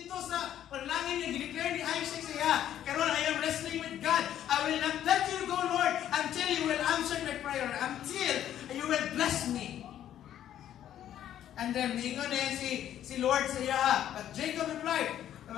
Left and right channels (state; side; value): quieter; right; 11.1 dB